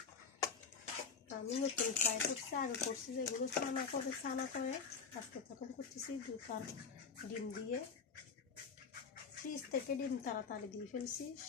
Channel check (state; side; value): quieter; right; 5.7 dB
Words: আমি নতুন ট্রাই করছি, আগে করছি যেগুলো ছানা করে আজকে তখন করতেছি দুধ আর ডিম দিয়ে। ফ্রিজ থেকে ডিম তাড়াতাড়ি দিয়ে ফেলছি,